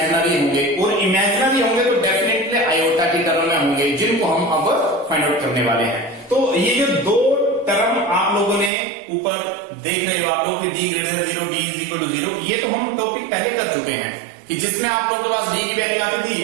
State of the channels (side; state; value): left; drops out; at 8.7 s